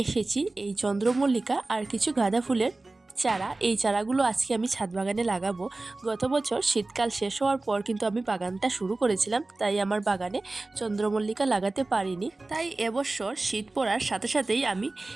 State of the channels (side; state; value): left; quieter; 3.1 dB